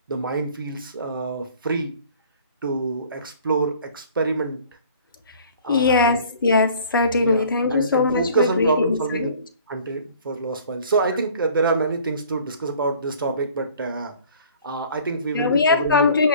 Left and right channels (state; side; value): inverted; both; correlation -0.51